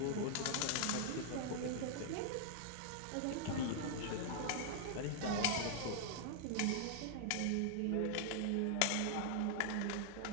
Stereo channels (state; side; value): different; both; correlation 0.00